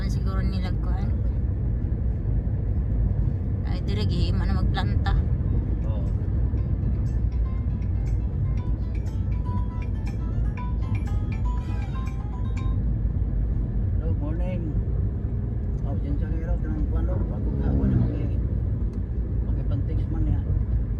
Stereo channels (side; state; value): both; identical; correlation 1.00